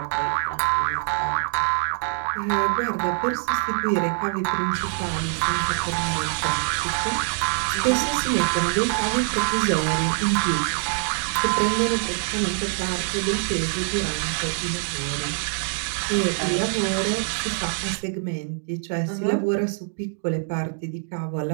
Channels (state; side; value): silent; left; 62 dB below the other